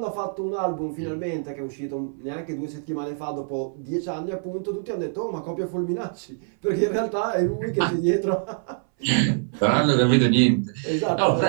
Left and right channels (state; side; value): silent; left; 61 dB below the other